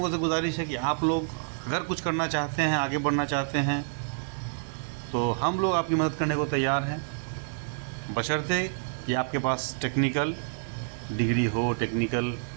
से गुजारिश है कि आप लोग अगर कुछ करना चाहते हैं, आगे बढ़ना चाहते हैं, तो हम लोग आपकी मदद करने को तैयार हैं, बशर्ते कि आपके पास टेक्निकल डिग्री हो, टेक्निकल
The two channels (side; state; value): left; silent; 59 dB below the other